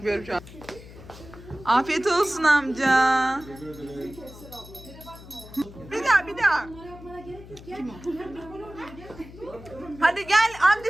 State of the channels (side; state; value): left; noise; hum, 17 dB below the sound